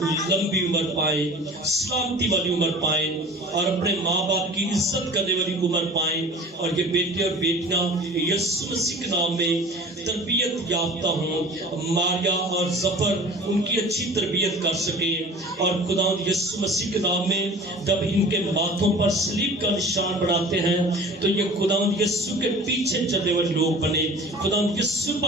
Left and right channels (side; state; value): both; normal; correlation 0.42